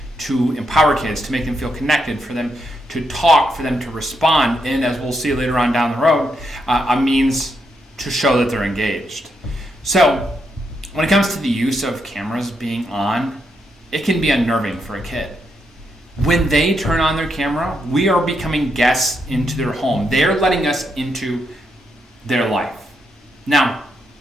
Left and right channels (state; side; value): normal; both; correlation 0.80